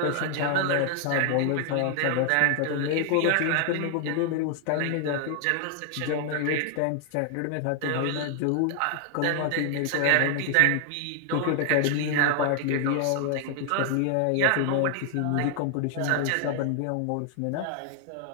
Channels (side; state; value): both; different; correlation 0.00